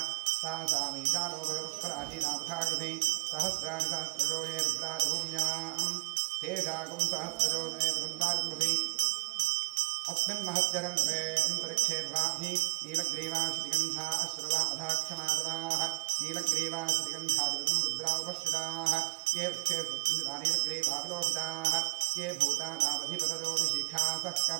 सा सामीशानो भगवत्पराजीनामथाकृति सहस्राणि सहस्रजो ये रुद्रादिभूम्यां तेषाकुं सहस्रजो नेतुन्वारिमृति अस्मिन् महत्यरन्त्रे अन्तरिक्षे वाधि नीलग्रीवाश्रिगन्धा अश्रवा अधाक्षमादराः नीलग्रीवाश्रिगन्धादिवं रुद्रा उपश्रिताः ये वृक्षे सुन्दरा नीलग्रीवाविलोहिताः ये भूतानावधिपतयो विशिखासः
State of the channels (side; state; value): left; quieter; 28.0 dB